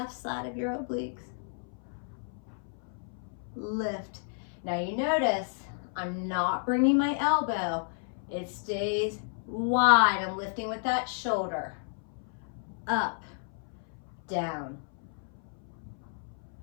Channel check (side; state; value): right; silent; 57 dB below the other